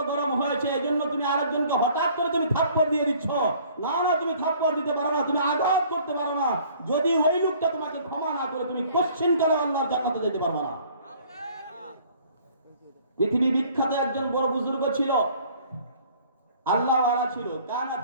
গরম হয়েছে, এজন্য তুমি আরেকজনকে হঠাৎ করে তুমি থাপ্পড় দিয়ে দিচ্ছ। না না, তুমি থাপ্পড় দিতে পারো না, তুমি আঘাত করতে পারো না। যদি ওই লোকটা তোমাকে ক্ষমা না করে, তুমি কোশ্চেন কালে আল্লাহর জান্নাতে যেতে পারবে না। পৃথিবী বিখ্যাত একজন বড় বুজুর্গ ছিল, আল্লাহ ওয়ালা ছিল, কানা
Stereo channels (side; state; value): both; inverted; correlation -0.55